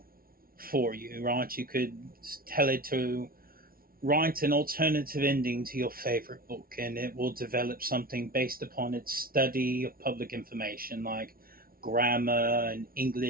for you, right? You could tell it to write an alternative ending to your favorite book and it will develop something based upon its study of public information like grammar and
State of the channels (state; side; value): late; left; 0.43 ms